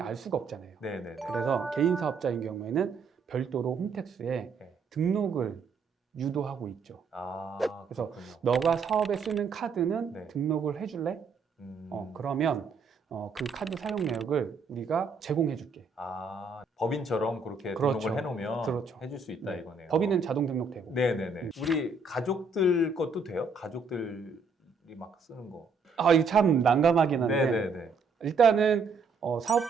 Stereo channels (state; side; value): quieter; left; 4.4 dB